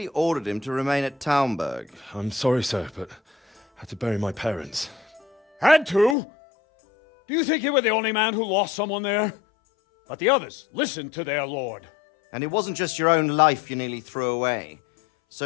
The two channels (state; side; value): drops out; right; at 6.2 s